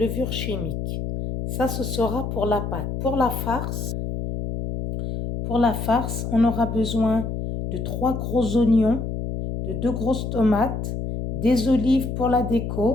chimique. Ça, ce sera pour la pâte. Pour la farce, on aura besoin de 3 gros oignons, de 2 grosses tomates, des olives pour la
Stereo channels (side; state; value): left; noise; hum, 4 dB below the sound